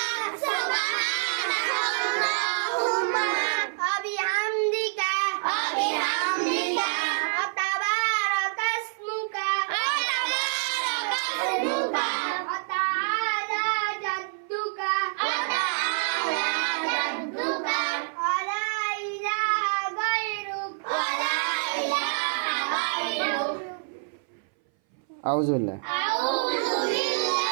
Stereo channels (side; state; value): left; silent; 59 dB below the other